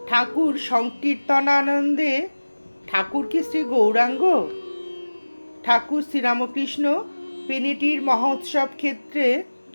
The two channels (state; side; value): inverted; both; correlation -1.00